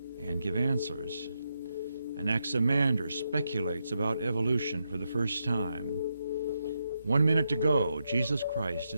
and give answers. Anaximander speculates about evolution for the first time. 1 minute to go, Jesus Christ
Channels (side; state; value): both; inverted; correlation -0.83